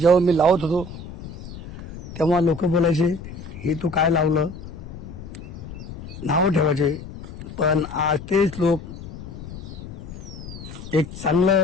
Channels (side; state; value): left; noise; rumble, 13 dB below the sound